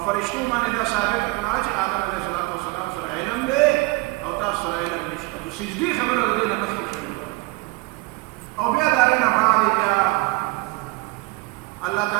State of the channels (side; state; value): left; quieter; 23.7 dB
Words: فرشتو باندې دا ثابت کړه چې آدم علیه السلام سره علم دی او تاسو سره علم نشته. خو سجدې خبره د دې نه مخکې شوې. او بیا د هغې نه بعد بیا الله